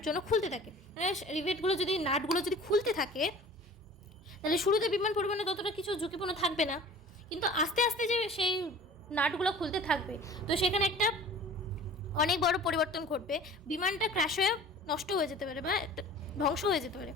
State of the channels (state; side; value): normal; both; correlation 0.43